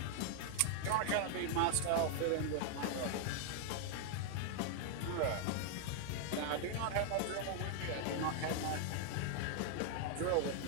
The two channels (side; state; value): both; different; correlation 0.00